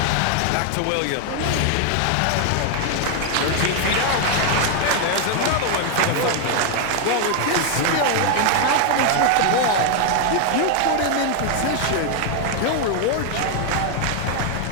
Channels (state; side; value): different; both; correlation 0.00